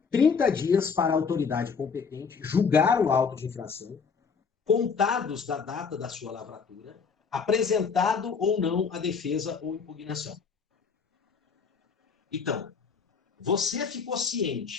30 dias para a autoridade competente julgar o auto de infração, contados da data da sua lavratura, apresentado ou não a defesa ou impugnação. Então, você ficou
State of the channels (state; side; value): quieter; right; 5.7 dB